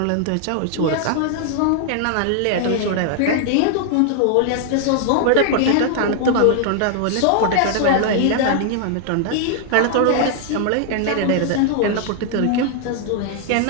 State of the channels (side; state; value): both; different; correlation 0.00